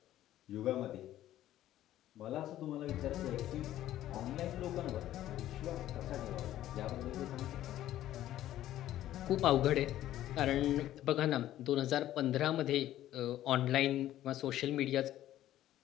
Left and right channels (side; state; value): right; quieter; 13.2 dB